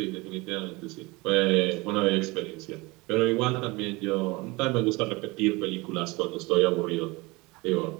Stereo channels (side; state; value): left; quieter; 23.9 dB